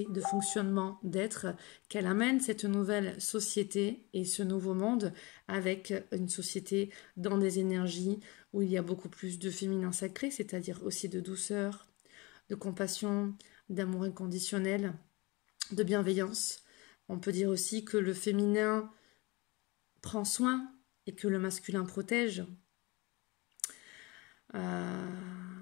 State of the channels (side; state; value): right; quieter; 24.9 dB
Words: de fonctionnement, d'être, qu'elle amène cette nouvelle société et ce nouveau monde avec une société dans des énergies où il y a beaucoup plus de féminin sacré, c'est-à-dire aussi de douceur, de compassion, d'amour inconditionnel, de bienveillance. On peut dire aussi que le féminin prend soin et que le masculin protège.